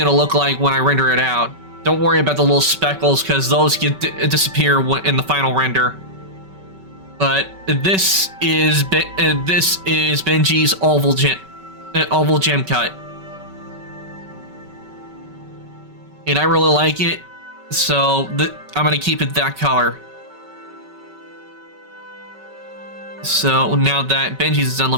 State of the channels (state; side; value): late; left; 5.3 ms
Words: to look like when I render it out. Don't worry about the little speckles, because those disappear in the final render. But this is Benji's oval gem cut, and I really like it, so I'm gonna keep it that color. So now that Benji's is done,